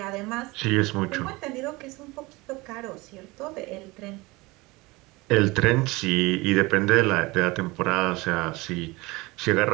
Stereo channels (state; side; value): quieter; left; 22.9 dB